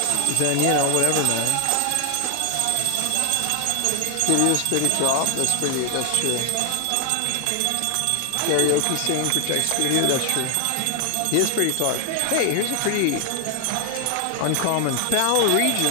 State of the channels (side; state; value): both; different; correlation 0.00